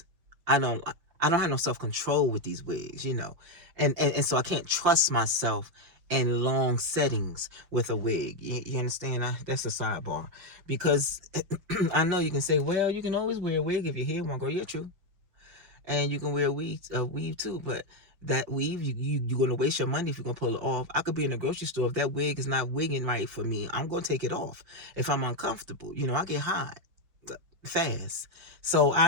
I don't I don't have no self-control with these wigs, and so I can't trust myself in long settings with a wig. You understand? That's a sidebar, because I know you can say, well, you can always wear a wig if your hair won't grow. You're true, and you can wear a weave too, but that weave, you're gonna waste your money if you're gonna pull it off. I could be in a grocery store, if that wig is not wigging right for me, I'm gonna take it off if I'm uncomfortable. I get hot fast. So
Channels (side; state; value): left; late; 6.1 ms